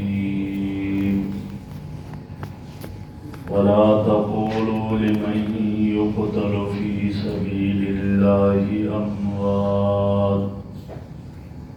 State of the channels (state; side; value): identical; both; correlation 1.00